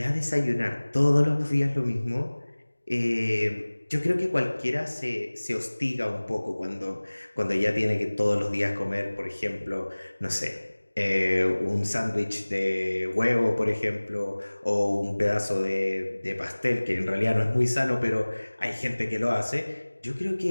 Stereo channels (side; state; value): both; inverted; correlation -1.00